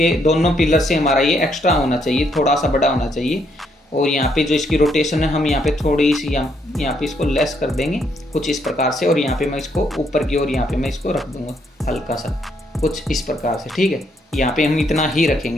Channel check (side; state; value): both; normal; correlation 0.73